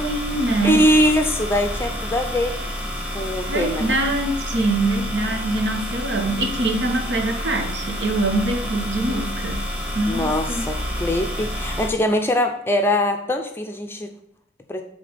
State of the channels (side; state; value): both; normal; correlation 0.59